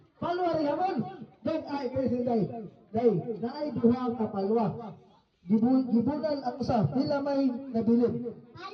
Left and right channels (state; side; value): identical; both; correlation 1.00